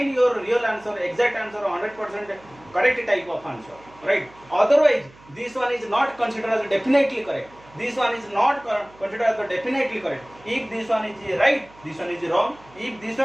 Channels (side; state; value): right; noise; hum, 25 dB below the sound